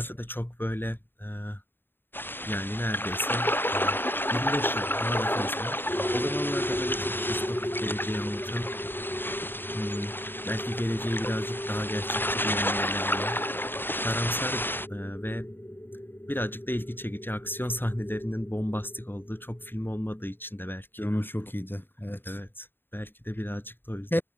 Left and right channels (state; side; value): late; right; 0.098 ms